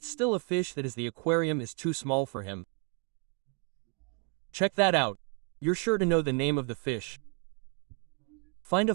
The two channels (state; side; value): quieter; left; 39.8 dB